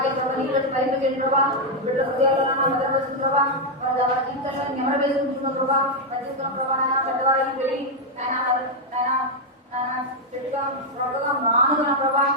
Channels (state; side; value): normal; both; correlation 0.00